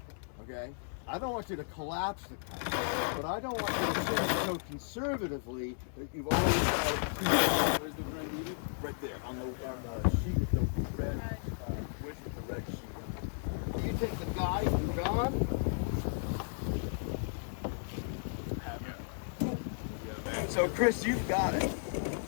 Okay? I don't want you to collapse the kite, but I don't want you to sit so conservatively that you've always got it. Where's the red needle? Right there, on the sheet with the red, with the red sheet. You take the guide and gone. So Chris, you've got it.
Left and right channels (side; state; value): right; silent; digital silence